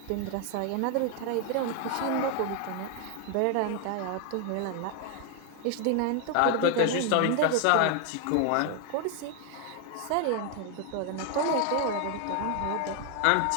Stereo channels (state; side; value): different; both; correlation 0.01